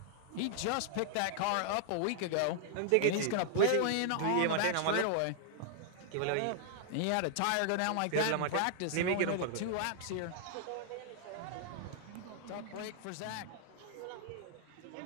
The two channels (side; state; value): both; different; correlation -0.01